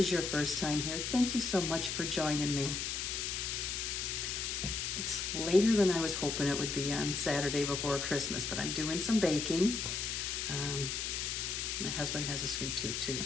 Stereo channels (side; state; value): left; noise; hiss, 2 dB below the sound